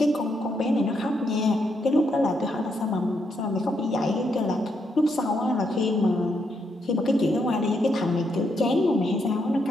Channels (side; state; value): both; normal; correlation 0.79